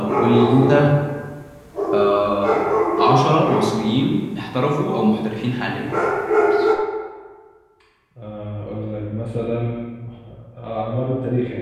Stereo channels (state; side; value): identical; both; correlation 1.00